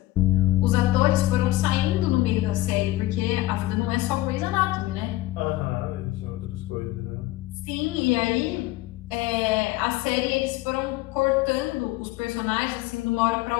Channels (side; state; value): right; quieter; 17.0 dB